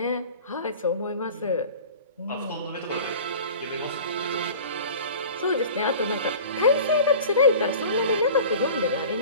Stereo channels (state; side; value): inverted; both; correlation -0.39